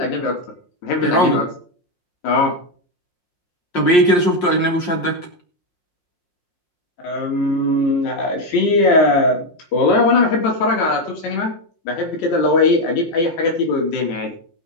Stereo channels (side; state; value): right; late; 5.6 ms